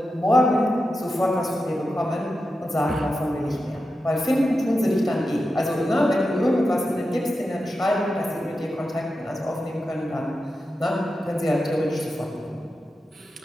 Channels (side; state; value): both; normal; correlation 0.90